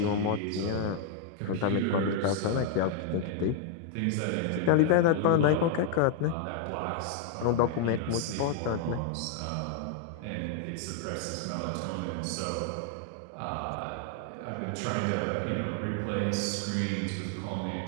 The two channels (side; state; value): both; different; correlation 0.00